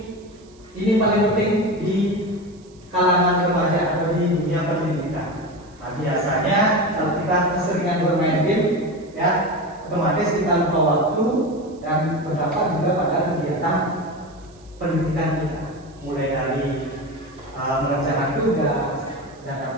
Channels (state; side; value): noise; right; hiss, 29 dB below the sound